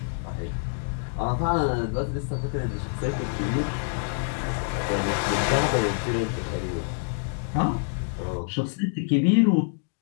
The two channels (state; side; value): silent; right; digital silence